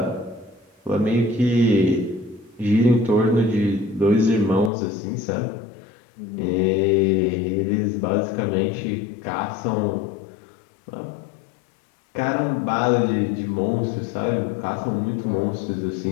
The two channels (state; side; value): drops out; right; at 4.7 s